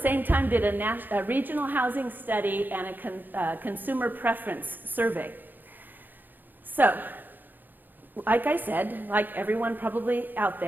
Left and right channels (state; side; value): late; left; 0.088 ms